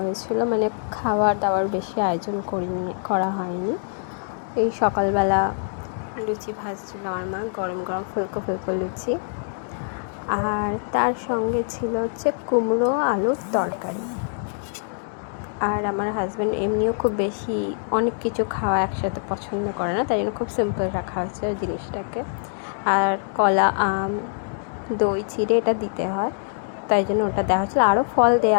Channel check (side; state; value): right; silent; digital silence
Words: মানে খাওয়ার দাওয়ার বেশি আয়োজন করা হয়নি। এই সকালবেলা লুচি ভাজছিল আমার মা, গরম গরম ফুলকো ফুলকো লুচি, আর তার সঙ্গে ছিল হচ্ছে কুমড়ো আলুর তরকারি। আর আমার হাজব্যান্ড এমনিও খুব বেশি অনেক কিছু খাওয়া একসাথে পছন্দ করে না, তাই জন্য খুব সিম্পল রাখা হয়েছে ওই জিনিসটাকে। আর কলা, আম, দই চিড়ে এটা দিতে হয়, তাই জন্য ওটা দেওয়া হচ্ছিলো। আরও ফল